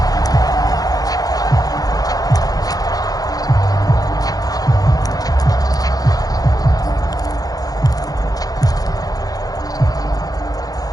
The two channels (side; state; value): right; late; 0.18 ms